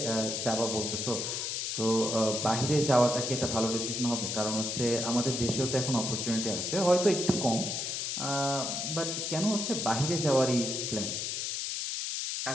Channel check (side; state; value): left; noise; hiss, 2 dB below the sound